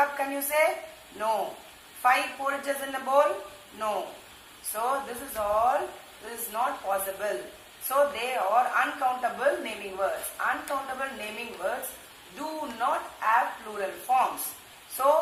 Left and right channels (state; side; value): identical; both; correlation 1.00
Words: Can you say? No. 5 porridges in a bowl? No. So this is all, this is not possible. So they are uncountable naming words. Uncountable naming words do not have plural forms.